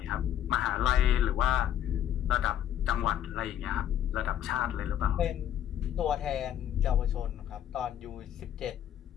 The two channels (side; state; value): right; quieter; 10.6 dB